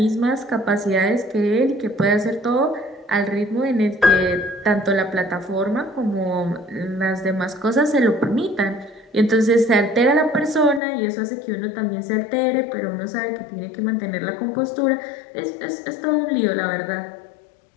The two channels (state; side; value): drops out; right; at 10.8 s